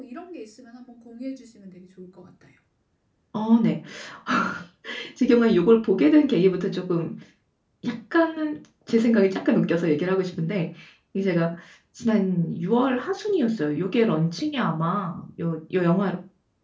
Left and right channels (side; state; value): both; identical; correlation 1.00